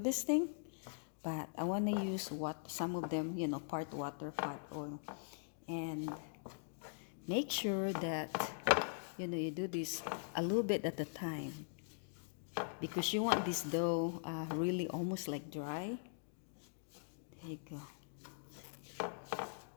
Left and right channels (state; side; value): silent; right; digital silence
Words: thing. But I want to use some of them, part water, part oil, and make sure that you do this a little bit at a time, because you want this dough really almost like dry. There you go.